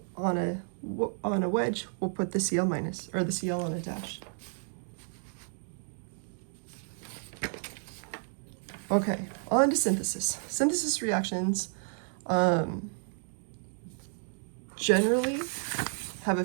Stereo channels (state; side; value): silent; left; 57 dB below the other